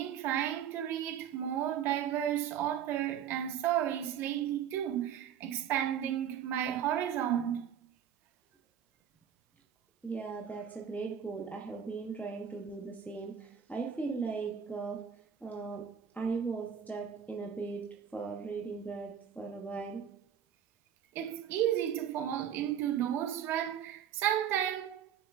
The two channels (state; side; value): quieter; left; 8.9 dB